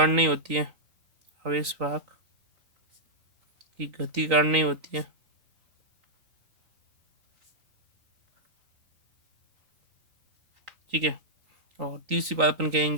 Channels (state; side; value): late; left; 3.9 ms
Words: नहीं होती है, आवेश वाहक की गति कारण नहीं होती है। ठीक है, और तीसरी बात अपन